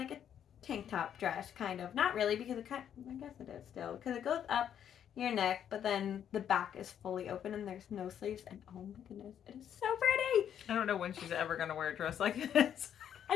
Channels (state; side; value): quieter; right; 9.3 dB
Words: a tank top dress, kind of. Not really, because I guess it is still. Because it goes up your neck, but then the back is fully open and there's no sleeves. And oh my goodness, it is so pretty. I don't know when she's ever going to wear a dress like this. I